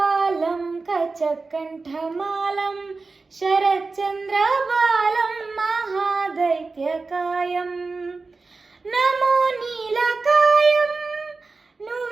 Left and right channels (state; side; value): quieter; left; 3.9 dB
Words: ಕಚಕಂಠಮಾಲಂ ಶರಚಂದ್ರಬಾಲಂ ಮಹಾದೈತ್ಯಕಾಯಂ ನಮೋ ನೀಲಕಾಯಂ